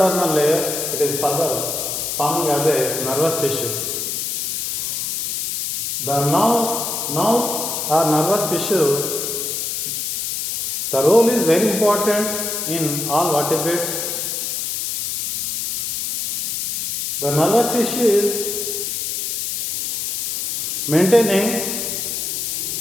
layer, it is further forming as a nervous tissue. The nerves or nervous tissue, the role is very important in all vertebrates. The nervous tissue is maintaining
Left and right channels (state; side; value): noise; left; hiss, 2 dB below the sound